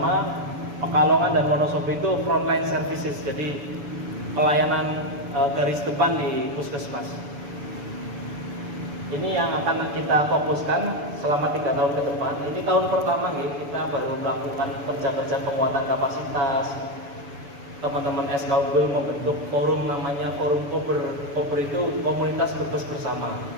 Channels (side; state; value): left; late; 7.0 ms